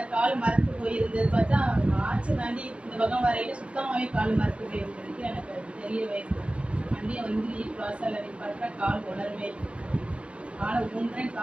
கால் மரத்து போயிருந்தது. பார்த்தா ஆச்சு தாண்டி இந்த பக்கம் வரையில சுத்தமாகவே கால் மரத்து போயிருந்ததுக்கு எனக்கு தெரியவே இல்லை. வண்டியை வந்து வாசல் நிப்பாட்டா கால் உணரவே இல்லை. கால் ஊன்றேன்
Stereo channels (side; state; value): left; late; 0.059 ms